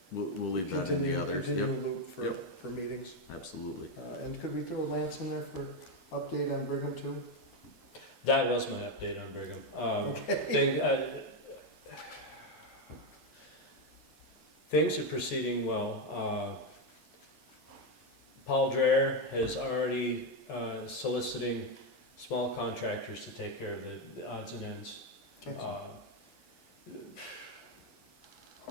We'll leave that in the others. continual Yep, loop for, Yep. for meetings. absolutely. And could we throw Lance in there for update on Brigham too? That was my update on Brigham. Things are proceeding well. Paul Dreher has already soliciting small contractors to take care of the odds and ends. Okay.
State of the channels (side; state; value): both; normal; correlation 0.07